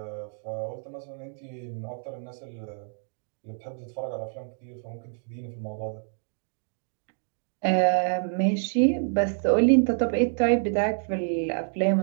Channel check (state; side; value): silent; left; 60 dB below the other